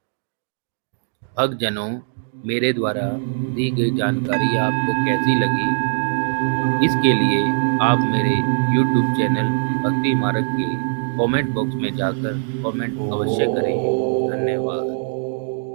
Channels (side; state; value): left; silent; digital silence